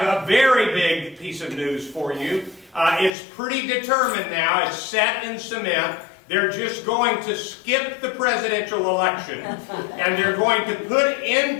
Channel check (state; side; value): drops out; right; at 3.1 s